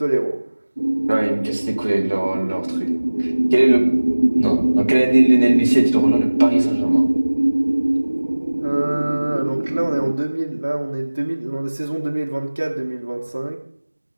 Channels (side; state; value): both; inverted; correlation -1.00